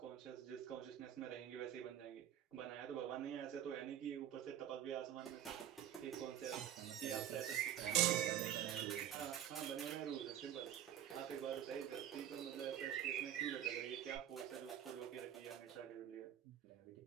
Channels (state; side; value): quieter; left; 10.6 dB